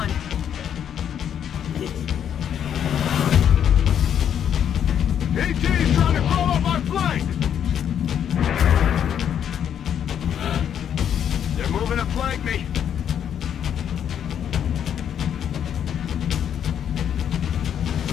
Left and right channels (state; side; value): quieter; right; 9.0 dB